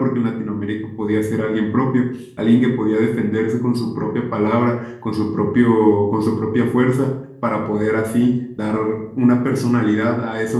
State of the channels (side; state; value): both; identical; correlation 1.00